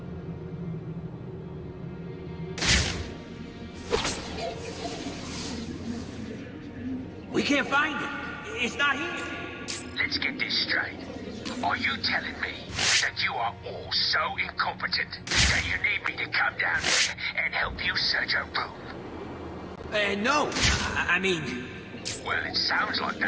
We can't find it. It's not here. Let's get this straight. Are you telling me that you are all so incompetent that you need me to come down there and help you search a room? No. I mean... Well, it sounds like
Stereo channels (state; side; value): identical; both; correlation 1.00